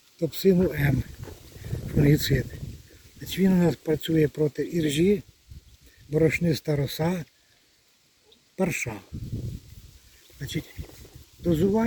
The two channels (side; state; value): both; identical; correlation 1.00